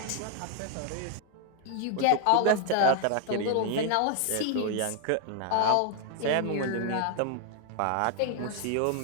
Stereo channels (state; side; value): different; both; correlation 0.00